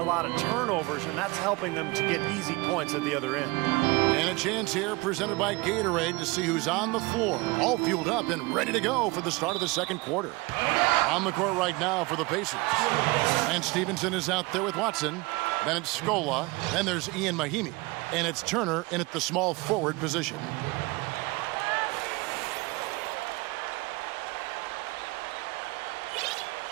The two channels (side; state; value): left; quieter; 24.3 dB